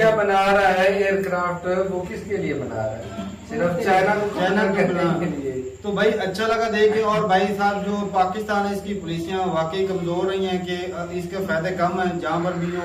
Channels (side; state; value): both; identical; correlation 1.00